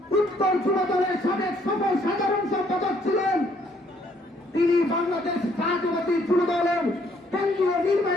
উত্তর যুব দলের সাবেক সফল সাধারণ সম্পাদক ছিলেন। তিনি বাংলাদেশ জাতীয়তাবাদী যুব দলের কেন্দ্রীয়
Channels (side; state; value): both; normal; correlation 0.66